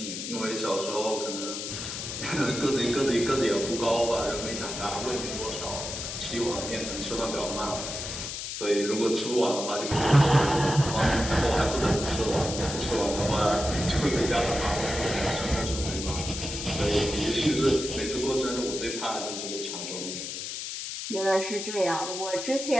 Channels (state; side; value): noise; left; hiss, 6 dB below the sound